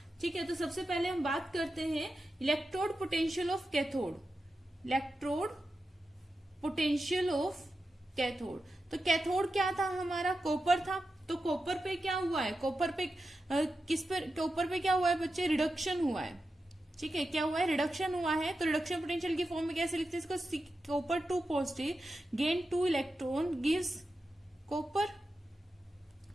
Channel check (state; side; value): normal; both; correlation 0.90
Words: ठीक है। तो सबसे पहले हम बात करते हैं electrode potential of cathode. Electrode potential of cathode, तो कैथोड क्या था हमारा, कॉपर था। तो कॉपर पे क्या हुआ है, कॉपर पे कॉपर पे क्या हुआ है बच्चे, रिडक्शन हुआ है, ठीक है। क्या हुआ है, रिडक्शन हुआ है। तो रिडक्शन पोटेंशियल की फॉर्म में कैसे लिखते हैं इसको, copper 2 positive gain 2 electron gives copper,